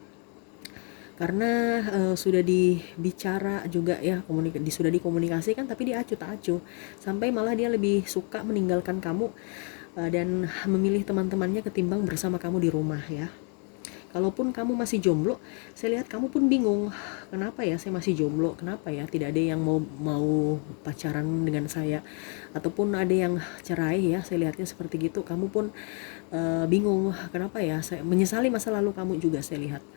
Karena sudah dibicara juga ya, sudah dikomunikasikan tapi dia acuh tak acuh, sampai malah dia lebih suka meninggalkan kamu dan memilih teman-temannya ketimbang bersama kamu di rumah ya. Kalaupun kamu masih jomblo, saya lihat kamu pun bingung, kenapa ya saya masih jomblo, kenapa ya tidak ada yang mau mau pacaran dengan saya, ataupun ada yang cerai ya, saya lihatnya seperti gitu. Kamu pun bingung, kenapa ya, saya menyesali masa lalu kamu juga saya lihat,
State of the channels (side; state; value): right; quieter; 38.4 dB